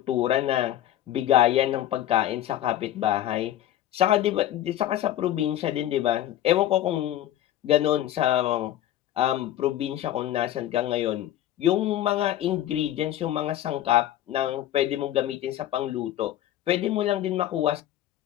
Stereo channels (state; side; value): quieter; right; 12.5 dB